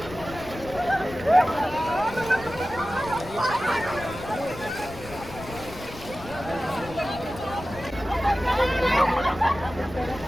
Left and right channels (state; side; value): noise; left; rumble, 15 dB below the sound